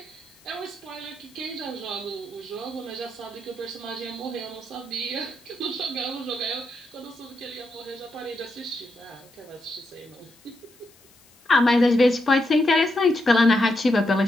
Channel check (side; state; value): left; noise; hiss, 28 dB below the sound